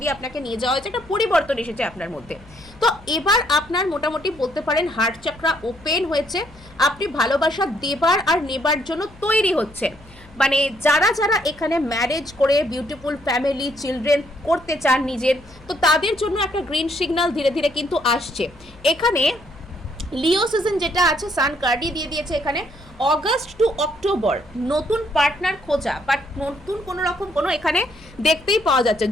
আপনাকে নিয়ে যাওয়া হয়েছে, একটা পরিবর্তন এসেছে আপনার মধ্যে। তো এবার আপনার মোটামুটি বলতে পারেন হার্ট চাকরা ওপেন হয়েছে, আপনি ভালোবাসা দেবার আর নেবার জন্য তৈরি হচ্ছেন। মানে যারা যারা এখানে ম্যারেজ করে বিউটিফুল ফ্যামিলি চিলড্রেন করতে চান নিজের, তো তাদের জন্য একটা গ্রিন সিগন্যাল ধীরে ধীরে কিন্তু আসছে। এখানে লিও সিজন যেটা আছে সান কার্ডই দিয়ে দিয়েছে এখানে, অগাস্ট টু অক্টোবর নতুন পার্টনার খোঁজা, বাট নতুন কোনো রকম কোনো এখানে দেখতেই পাওয়া যাচ্ছে।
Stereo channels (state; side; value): noise; left; hum, 23 dB below the sound